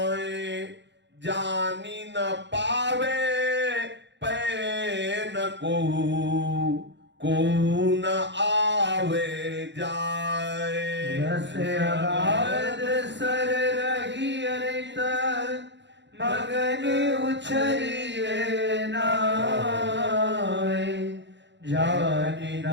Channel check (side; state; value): left; late; 0.52 ms